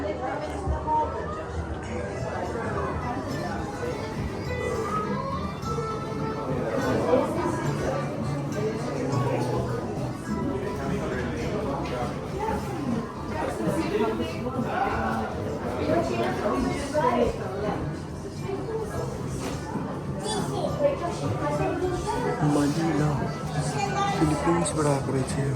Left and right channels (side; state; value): both; identical; correlation 1.00